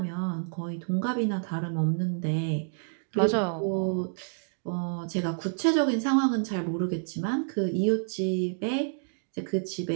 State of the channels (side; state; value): left; silent; digital silence